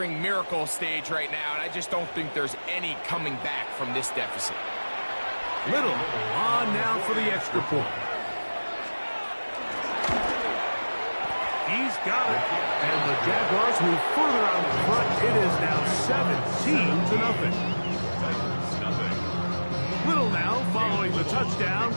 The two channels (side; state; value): both; inverted; correlation -1.00